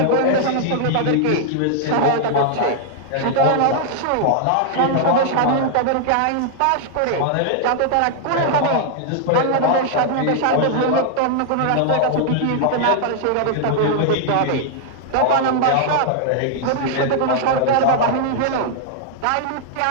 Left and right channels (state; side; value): different; both; correlation -0.01